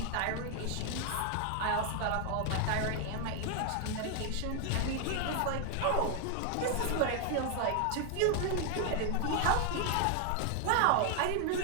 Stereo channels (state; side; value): different; both; correlation 0.00